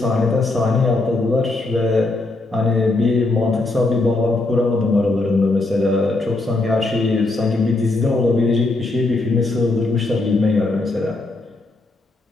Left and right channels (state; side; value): quieter; right; 3.1 dB